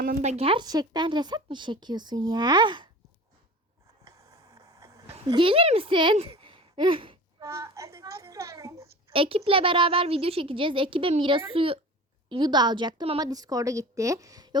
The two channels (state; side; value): normal; both; correlation 0.38